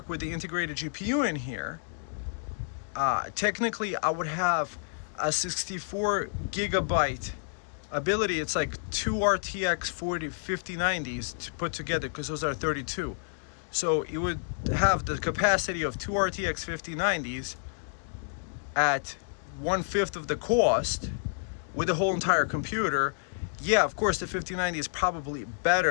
with the integrated GPU in here. Technically I would have a 64 gigabyte ability. It's like 2 RTX 5090s to put together, because those are 32. So it would have the capacity of 2 RTX 5090s at 1/5 of the cost with the whole entire computer. Yeah, of course the 5090 is probably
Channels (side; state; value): right; silent; digital silence